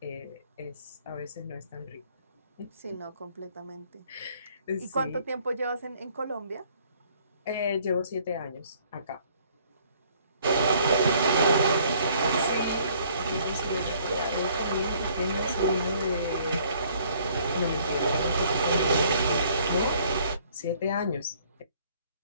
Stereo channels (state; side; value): inverted; both; correlation -0.61